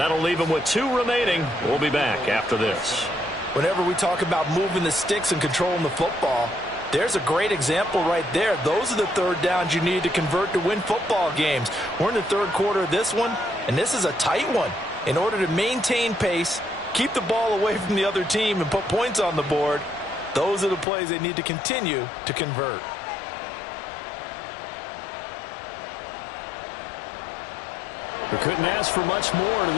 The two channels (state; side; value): drops out; right; at 20.9 s